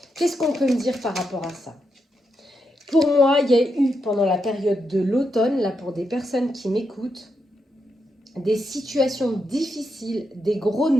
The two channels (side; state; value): both; normal; correlation 0.83